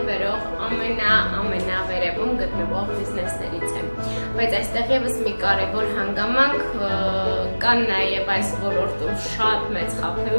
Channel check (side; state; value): both; inverted; correlation -1.00